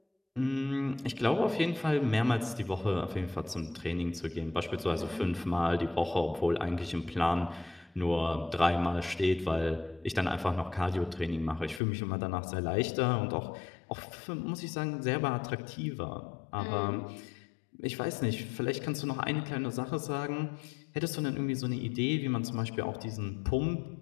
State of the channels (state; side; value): drops out; right; at 11.8 s